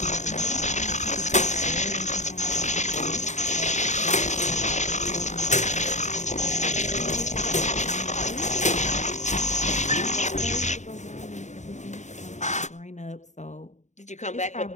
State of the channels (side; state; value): right; late; 0.34 ms